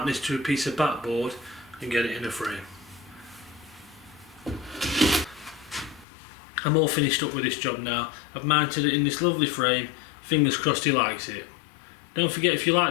this to a piece of backboard and get it in a frame. I'm all finished up with this job now. I've mounted it in this lovely frame. Fingers crossed he likes it. Don't forget, if you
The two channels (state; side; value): drops out; right; at 6.1 s